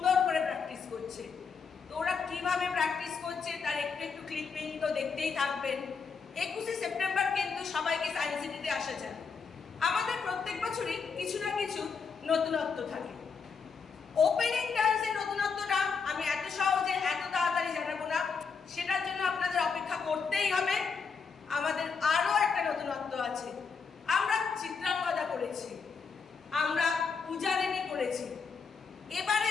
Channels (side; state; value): right; quieter; 5.5 dB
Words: করে প্র্যাকটিস করছে। তো ওরা কীভাবে প্র্যাকটিস করছে তার একটু একটু ক্লিপিং তো দেখতেই থাকবেন। 21শে সেপ্টেম্বর কিন্তু সবাইকে সায়েন্স সিটিতে আসা যায়। আমাদের প্রত্যেক বছরই কিছু না কিছু নতুনত্ব থাকে। ওপেনিং ডান্সের নতুনত্বটা আমি এত সহজে এত তাড়াতাড়ি জানাবো না, সেটার জন্য আপনাদের অপেক্ষা করতেই হবে। আমাদের আরও একটা নতুনত্ব আছে। আমরা চিত্রাঙ্গদা করেছি, আমরা পূজারিনী করেছি। এবারে